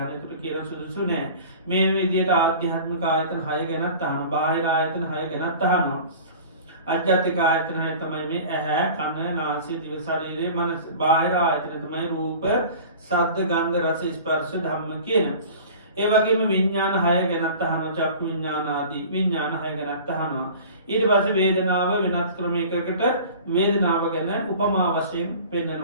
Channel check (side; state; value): both; inverted; correlation -0.41